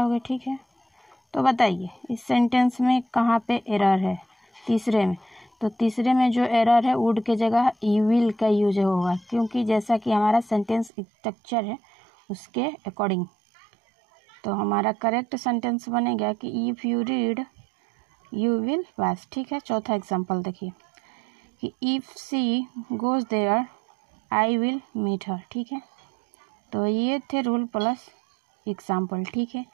ठीक है। तो बताइए इस सेंटेंस में कहाँ पे एरर है? तीसरे में। तो तीसरे में जो एरर है वुड के जगह यू विल का यूज होगा, क्योंकि जैसा कि हमारा सेंटेंस स्ट्रक्चर है उसके अकॉर्डिंग। तो हमारा करेक्ट सेंटेंस बनेगा कि if you read you will pass. ठीक है, चौथा एग्जाम्पल देखिए कि if she goes there I will meet her. ठीक है, तो ये थे रूल प्लस एग्जाम्पल। ठीक है,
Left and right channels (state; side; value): drops out; left; at 10.9 s